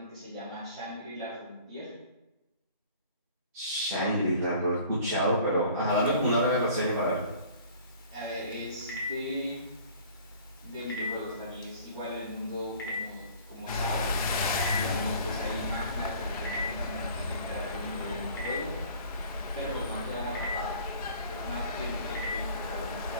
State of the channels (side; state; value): both; inverted; correlation -0.49